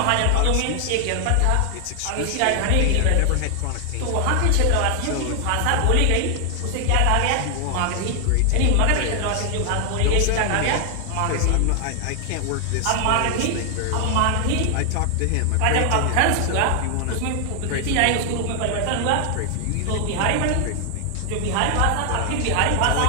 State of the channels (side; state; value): both; different; correlation 0.00